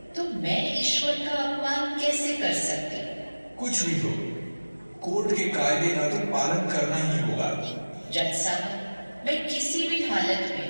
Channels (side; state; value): both; inverted; correlation -1.00